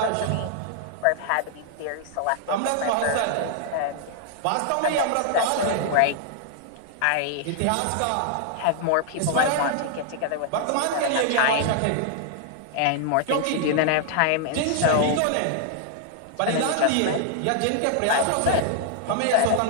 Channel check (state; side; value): different; both; correlation -0.01